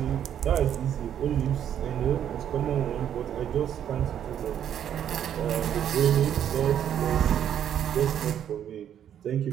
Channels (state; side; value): quieter; left; 9.7 dB